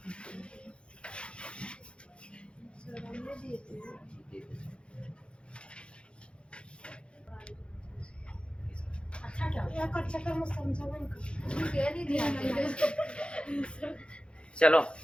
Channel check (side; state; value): right; late; 0.057 ms